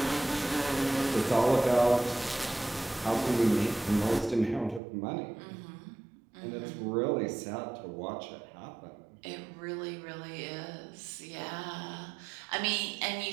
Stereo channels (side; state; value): left; drops out; at 4.8 s